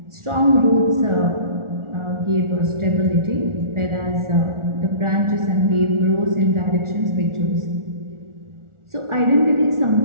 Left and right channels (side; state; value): left; late; 1.4 ms